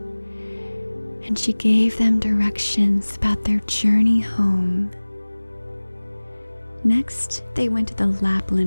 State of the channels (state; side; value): inverted; both; correlation -1.00